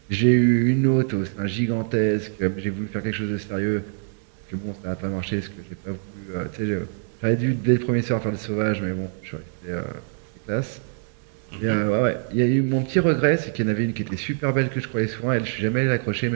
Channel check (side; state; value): left; silent; digital silence